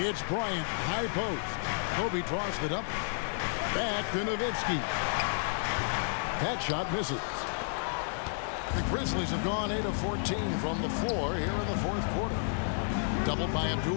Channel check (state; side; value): silent; right; digital silence